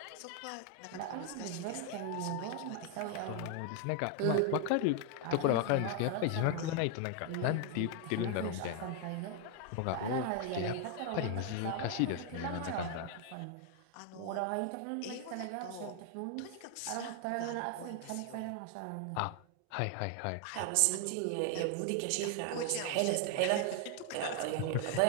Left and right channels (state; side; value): different; both; correlation 0.00